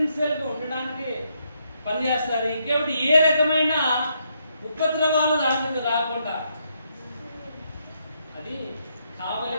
ఉండడానికి పనిచేస్తారు. ఇంకేమిటి ఏ రకమైన ఉపద్రవాలు దాని మీద రాకుండా అది కావాలి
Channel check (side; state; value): both; inverted; correlation -0.76